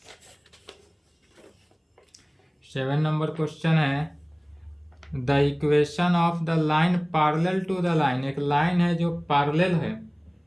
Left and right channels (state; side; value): identical; both; correlation 1.00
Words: 7 नंबर क्वेश्चन है the equation of the line parallel to the line, एक लाइन है जो पैरेलल है,